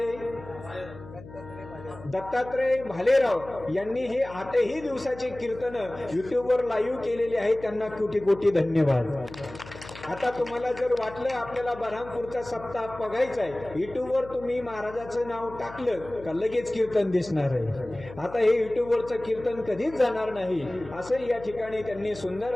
दत्तात्रय भालेराव यांनी हे 8ही दिवसाचे कीर्तन युट्यूबवर लाईव्ह केलेले आहे. त्यांना कोटी कोटी धन्यवाद. आता तुम्हाला जर वाटलं आपल्याला बऱ्हामपूरचा सप्ताह बघायचा आहे, युट्यूबवर तुम्ही महाराजाचं नाव टाकलं का लगेच कीर्तन दिसणार आहे. आता हे युट्यूबवरचं कीर्तन कधीच जाणार नाही असं या ठिकाणी त्यांनी सुंदर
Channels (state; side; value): noise; left; hum, 16 dB below the sound